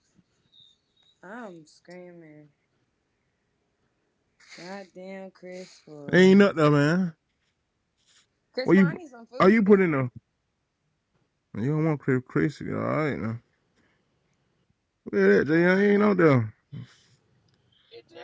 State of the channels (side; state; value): both; identical; correlation 1.00